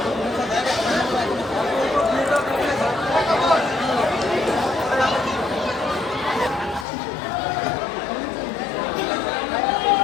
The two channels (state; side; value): drops out; right; at 6.9 s